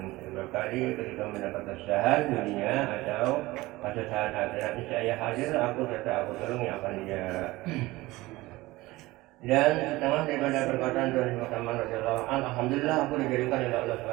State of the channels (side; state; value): left; quieter; 19.6 dB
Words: berkali ketika mendapat kesusahan dunia atau kesusahan akhirat, niscaya hadir aku serta aku tolong yang akan dia. Dan setengah daripada perkataan Tuhan Yesus Saman radhiyallahu anhu, alhamdulillah aku dijadikan oleh Allah